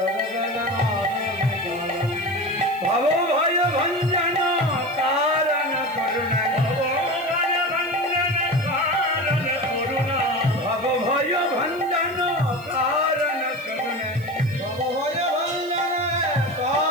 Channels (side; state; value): right; noise; hiss, 24 dB below the sound